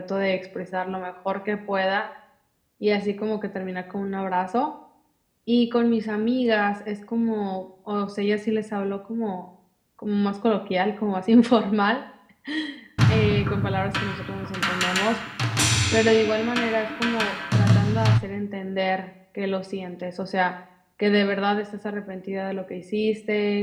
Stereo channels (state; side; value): identical; both; correlation 1.00